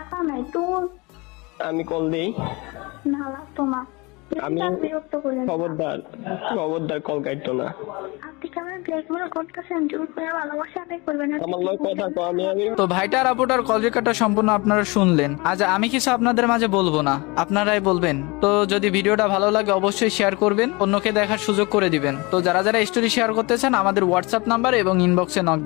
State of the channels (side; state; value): right; quieter; 25.8 dB